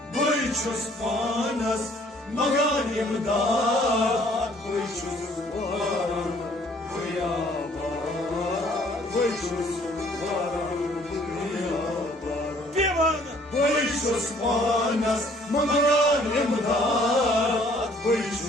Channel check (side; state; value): both; normal; correlation 0.59